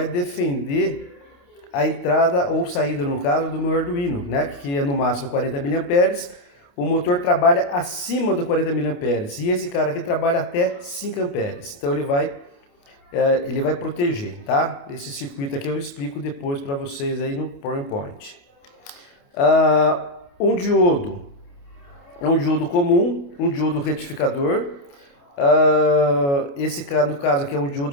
defender a entrada ou saída, no caso do meu Arduino, né, que é no máximo 40 mA. O motor trabalha acima do 40 mA e esse cara aqui trabalha até 5 amperes. Então ele vai proteger, tá? Esse circuito aqui eu explico depois para vocês aí no PowerPoint. Um diodo é um diodo comum, um diodo retificador. Esse no caso aqui é um diodo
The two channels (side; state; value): right; late; 28 ms